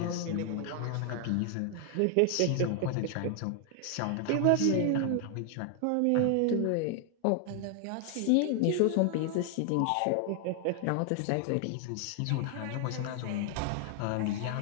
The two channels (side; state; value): both; different; correlation 0.00